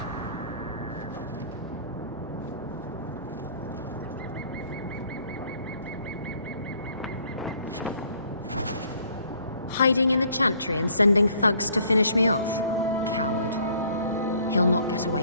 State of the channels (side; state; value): both; inverted; correlation -0.60